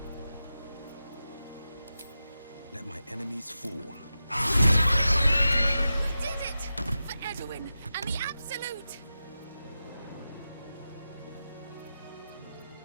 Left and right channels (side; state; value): both; inverted; correlation -0.92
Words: Let my enemies fall. We did it! For Edwin and the Absolute! Loot!